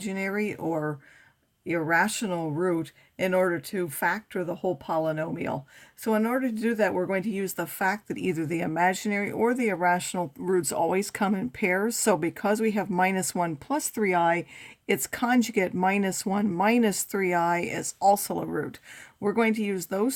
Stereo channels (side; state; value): both; identical; correlation 1.00